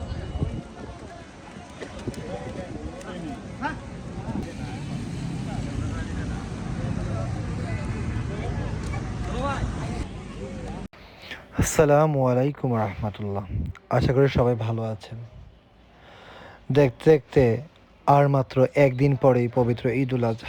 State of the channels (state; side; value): identical; both; correlation 1.00